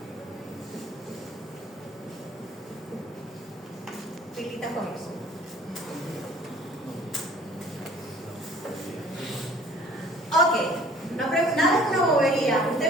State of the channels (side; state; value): both; normal; correlation 0.52